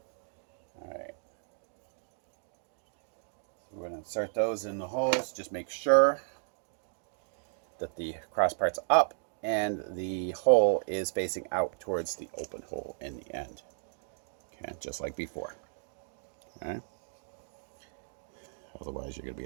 alright. So we're going to insert those in the holes. Just make sure that the cross part's up and the hole is facing out towards the open hole in the end. Okay, just like before. Okay. Otherwise, you're going to be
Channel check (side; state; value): left; silent; digital silence